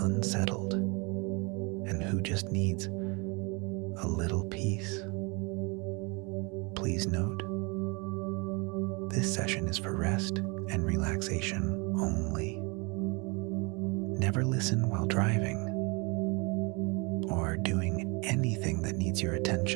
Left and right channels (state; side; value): quieter; left; 29.5 dB